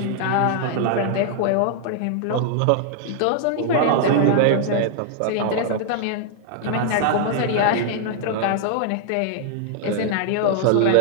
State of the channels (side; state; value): both; different; correlation 0.00